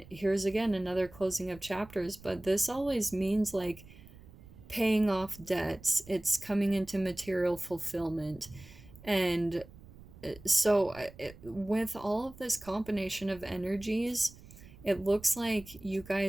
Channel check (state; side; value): noise; right; rumble, 20 dB below the sound